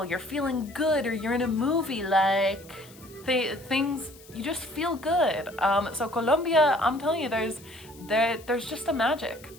you're feeling good, or you're in a movie, like things, you just feel good. So Colombia, I'm telling you, there's just a magic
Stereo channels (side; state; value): left; noise; hiss, 23 dB below the sound